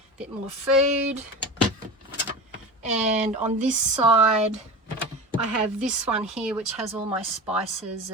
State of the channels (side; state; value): both; normal; correlation 0.30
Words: bit more food. And on this side, I have this one here, which has all my spices